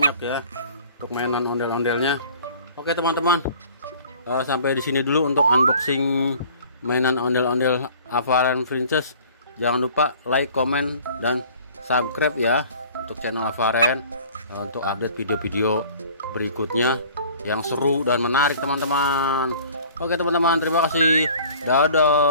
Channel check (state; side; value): inverted; both; correlation -0.49